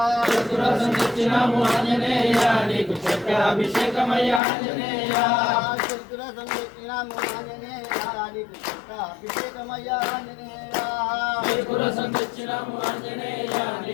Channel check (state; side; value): drops out; right; at 4.4 s